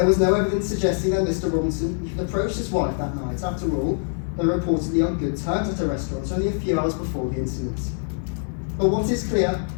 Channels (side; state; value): right; silent; digital silence